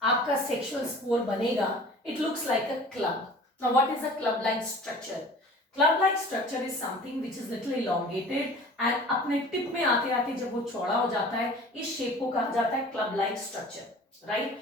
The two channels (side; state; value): both; normal; correlation 0.44